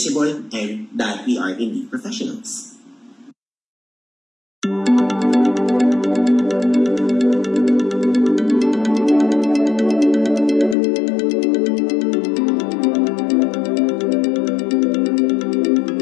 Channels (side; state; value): right; drops out; at 10.8 s